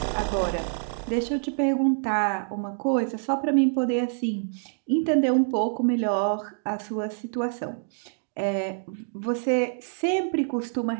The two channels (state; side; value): silent; left; digital silence